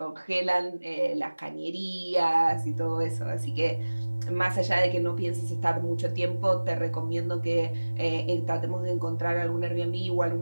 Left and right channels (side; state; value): both; inverted; correlation -1.00